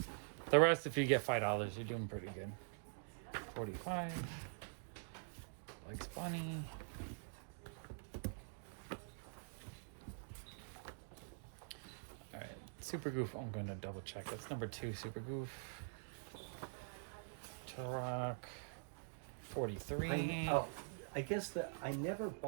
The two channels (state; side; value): silent; left; digital silence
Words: The rest, if you get $5, you're doing pretty good. 45. Likes Bunny. Alright, Super Goof, I'm gonna double check. That's #2, Super Goof. Turok, 43. I guess that I never